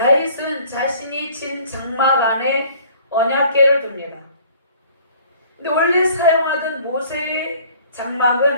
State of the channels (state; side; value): inverted; both; correlation -0.53